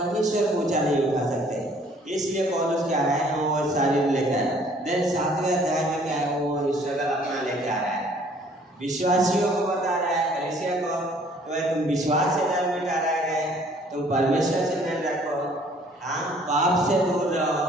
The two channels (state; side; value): normal; both; correlation 0.58